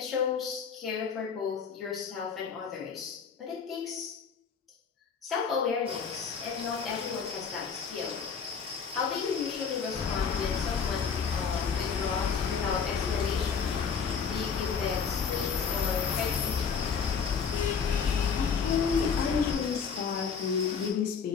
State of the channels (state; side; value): quieter; right; 6.2 dB